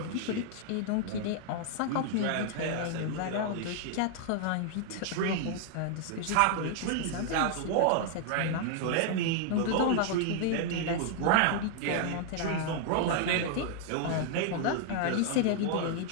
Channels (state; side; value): different; both; correlation 0.00